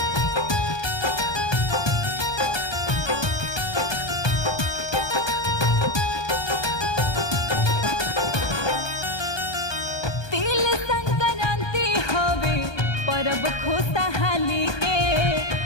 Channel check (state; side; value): late; right; 1.2 ms